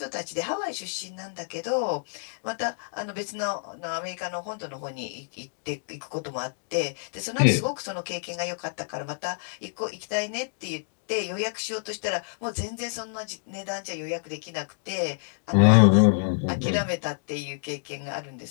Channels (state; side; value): silent; right; digital silence